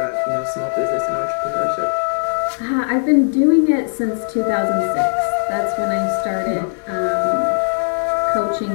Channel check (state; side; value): silent; right; 67 dB below the other